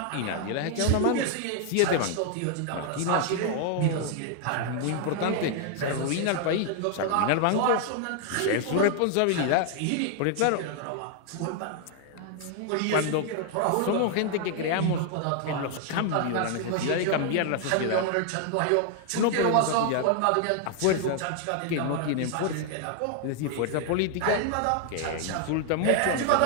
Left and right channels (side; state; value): both; different; correlation 0.00